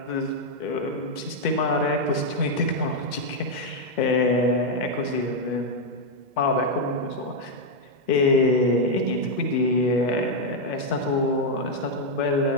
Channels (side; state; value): left; late; 2.1 ms